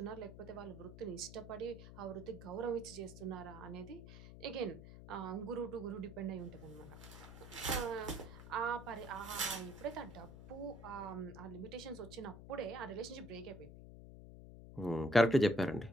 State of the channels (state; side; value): noise; left; hum, 13 dB below the sound